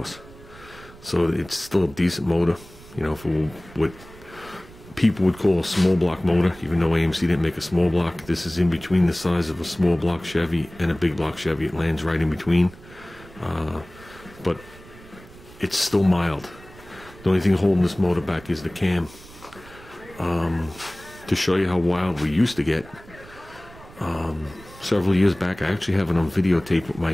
So it's still a decent motor, you know, for what people would call a small block motor, even though AMC didn't make a small block. This is in between the size of a small block Chevy and a big block Chevy. It lands right in between. But it's still mild. The only thing holding this motor back is the cam. To show you how wild we used to get, several years back, I actually have it on videotape with my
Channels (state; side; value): noise; right; rumble, 20 dB below the sound